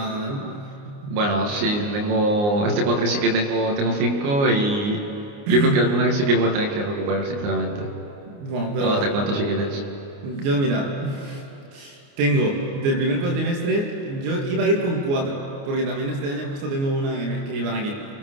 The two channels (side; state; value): left; late; 29 ms